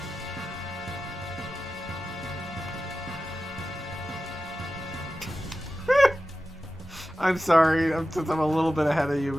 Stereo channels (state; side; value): normal; both; correlation 0.94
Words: I'm sorry, since I'm a little bit ahead of you,